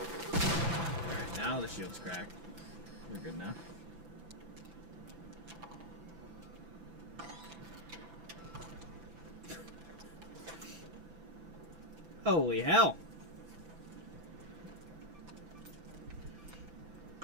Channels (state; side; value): late; left; 6.0 ms